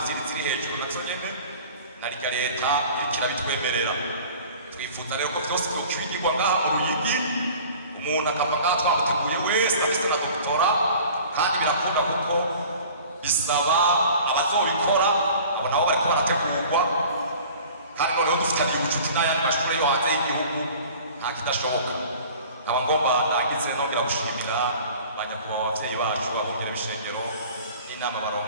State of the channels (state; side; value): inverted; both; correlation -0.45